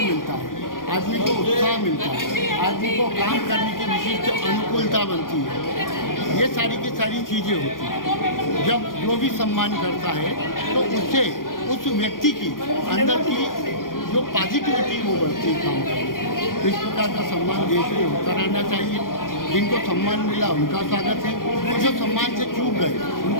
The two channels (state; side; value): late; right; 0.90 ms